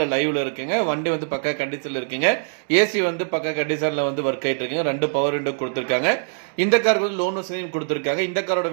லைவில் இருக்குங்க. வண்டி வந்து பக்கா கண்டிஷனில் இருக்குங்க. ஏசி வந்து பக்கா கண்டிஷனில் வந்து ஒர்க் ஆகிட்டு இருக்குங்க. 2 பவர் விண்டோ கொடுத்துருக்காங்க. இந்த காருக்கு வந்து லோன் வசதியும் கொடுத்துருக்காங்க. இந்த காரோட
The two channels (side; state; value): left; silent; digital silence